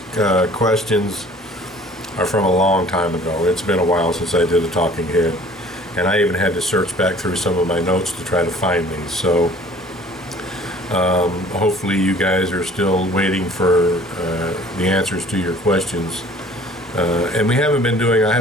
questions are from a long time ago. It's been a while since I did a talking head, and I even had to search back through some of my notes to try to find these. So hopefully you guys are still waiting for the answers to your questions. And I haven't been doing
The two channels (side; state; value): both; normal; correlation 0.51